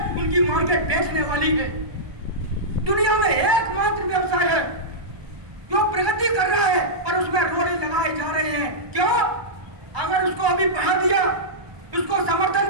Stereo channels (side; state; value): left; late; 1.0 ms